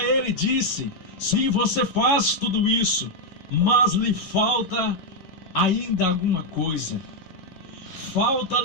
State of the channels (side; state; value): right; late; 11 ms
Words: ele, disse: sim, você faz tudo isso, mas lhe falta ainda alguma coisa.